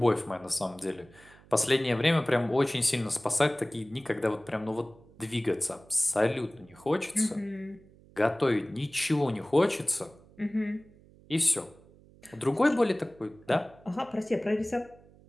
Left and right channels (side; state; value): right; noise; hum, 25 dB below the sound